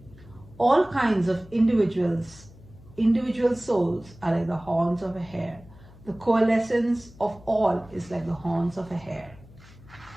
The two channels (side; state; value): left; noise; hum, 22 dB below the sound